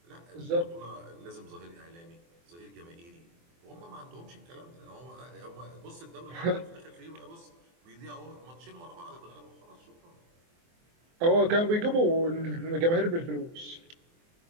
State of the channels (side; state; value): left; late; 24 ms